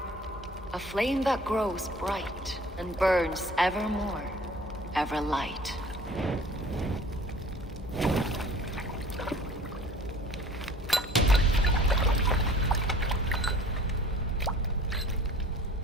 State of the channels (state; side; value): normal; both; correlation 0.48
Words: A flame that grows bright and burns ever more, ever light.